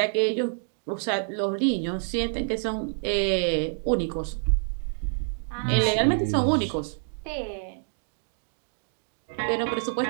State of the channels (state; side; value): silent; left; digital silence